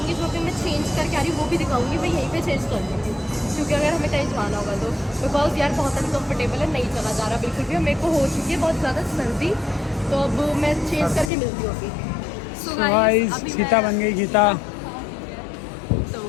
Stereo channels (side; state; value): right; drops out; at 11.3 s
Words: जो कि मैं चेंज करके आ रही हूँ, वो भी दिखाऊंगी। मैं यहीं पे चेंज कर दूँगी क्योंकि अगर हमें कहीं जाना होगा तो, बिकॉज यार बहुत अनकम्फर्टेबल है, नहीं चला जा रहा बिल्कुल भी। मेरे को हो चुकी है बहुत ज़्यादा सर्दी, तो अब मैं चेंज करके मिलती हूँ अभी। सो गाइस अभी गीता बन गई गीता। तो